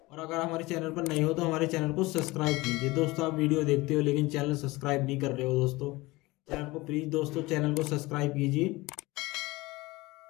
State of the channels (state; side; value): quieter; right; 21.3 dB